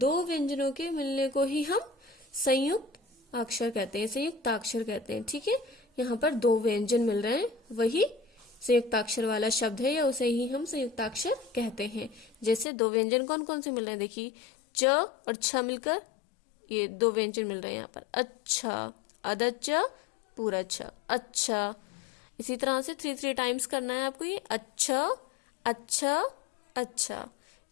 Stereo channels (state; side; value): drops out; right; at 12.7 s